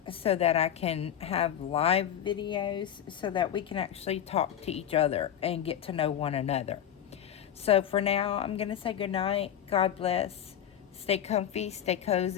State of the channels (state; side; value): quieter; right; 9.9 dB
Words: so that I can have live videos so that we can actually talk to each other and get to know one another. So for now, I'm going to say good night. God bless. Stay comfy, stay